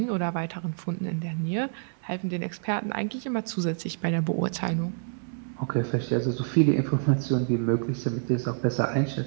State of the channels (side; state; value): left; silent; 60 dB below the other